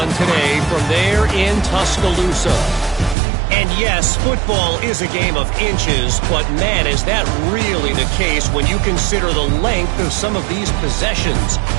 today from there in Tuscaloosa. And yes, football is a game of inches, but man, is that really the case when you consider the length of some of these possessions.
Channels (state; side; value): drops out; left; at 3.2 s